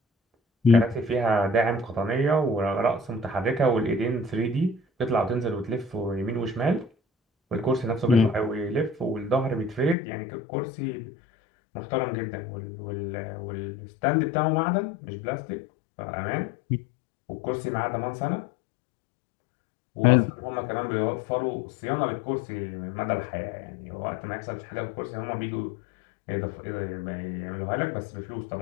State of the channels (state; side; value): drops out; right; at 10.0 s